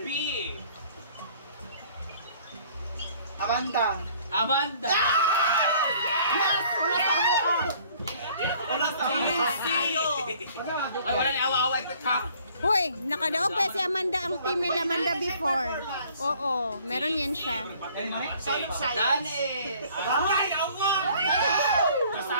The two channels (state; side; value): inverted; both; correlation -0.56